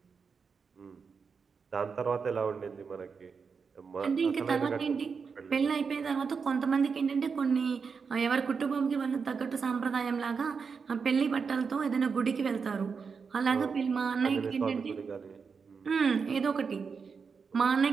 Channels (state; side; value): quieter; left; 5.5 dB